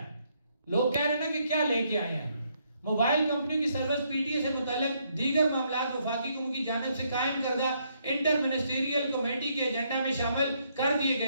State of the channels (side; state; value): both; inverted; correlation -0.73